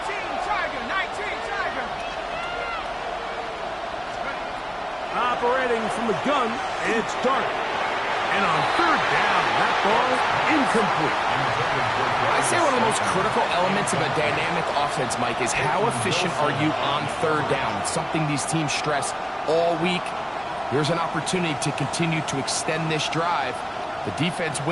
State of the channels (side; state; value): both; identical; correlation 1.00